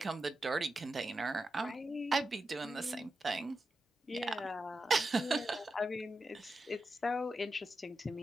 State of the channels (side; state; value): both; normal; correlation 0.89